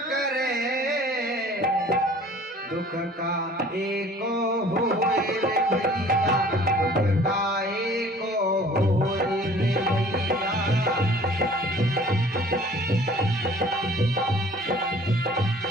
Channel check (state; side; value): normal; both; correlation 0.51